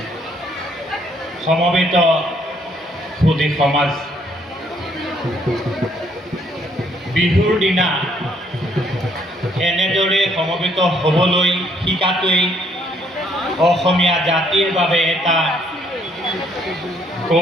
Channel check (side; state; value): both; normal; correlation 0.67